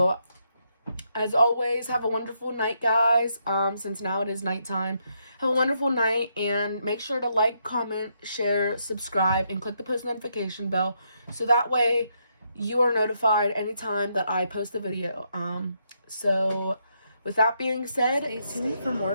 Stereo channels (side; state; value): both; inverted; correlation -0.77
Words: as always, have a wonderful night, guys. Since now it is nighttime. Have a wonderful night, and make sure to like, comment, share, subscribe, and click the post notification bell, so that way you are notified anytime that I post a video. So with that being said, stay tuned for